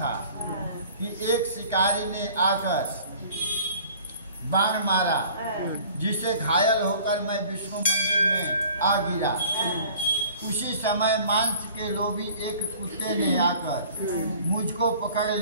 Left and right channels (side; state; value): both; inverted; correlation -0.49